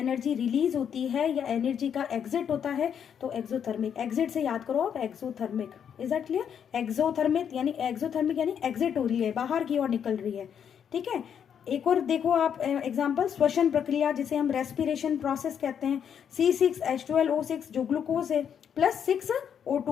रिलीज होती है या एनर्जी का एग्जिट होता है तो एक्सोथर्मिक, एग्जिट से याद करो आप exothermic, is that clear? Exothermic यानी एग्जिट हो रही है, बाहर की ओर निकल रही है, ठीक है। एक और देखो आप एग्जांपल, श्वसन प्रक्रिया जिसे हम रेस्पिरेशन प्रोसेस कहते हैं, C6H12O6 जो ग्लूकोज है प्लस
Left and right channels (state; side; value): quieter; right; 8.2 dB